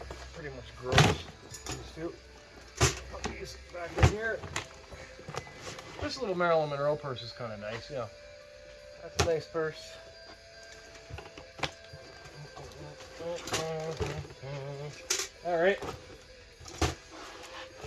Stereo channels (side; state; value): both; identical; correlation 1.00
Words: pretty much gross. These two. Put these back in here. This little Marilyn Monroe purse is kind of nice, yeah. That's a nice purse. Alright.